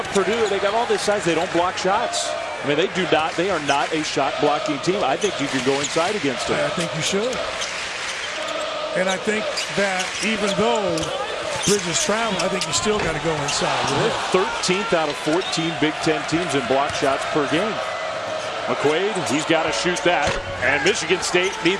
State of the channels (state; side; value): identical; both; correlation 1.00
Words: Purdue, they got all this size, they don't block shots. I mean, they are not a shot blocking team. I think you can go inside against them. I think you should. And I think that even though Bridges traveled, I think you still got to go inside. They're 13th out of 14 Big Ten teams in block shots per game. McQuaid, he's got to shoot that, and Michigan State